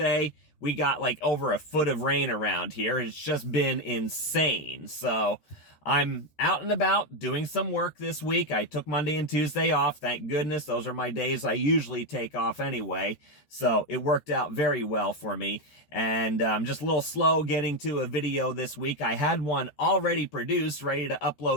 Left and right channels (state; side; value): late; right; 13 ms